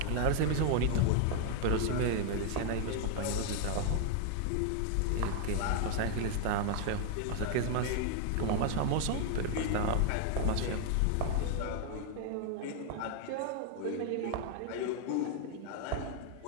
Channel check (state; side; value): different; both; correlation 0.00